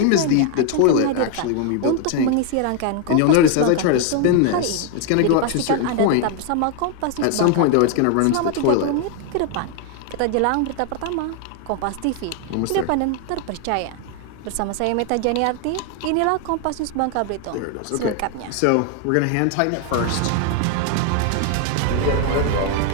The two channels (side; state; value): both; different; correlation 0.00